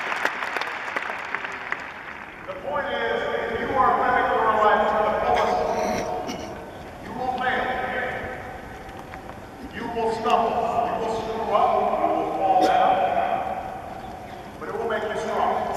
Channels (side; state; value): both; identical; correlation 1.00